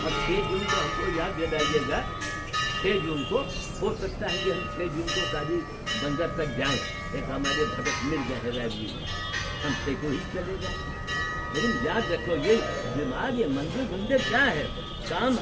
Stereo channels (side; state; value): both; identical; correlation 1.00